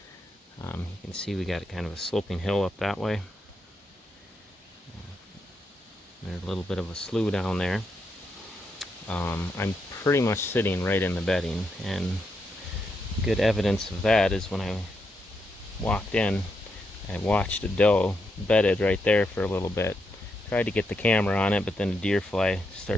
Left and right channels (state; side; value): normal; both; correlation 0.82